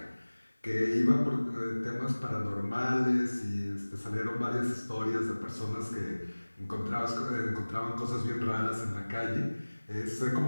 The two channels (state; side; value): inverted; both; correlation -1.00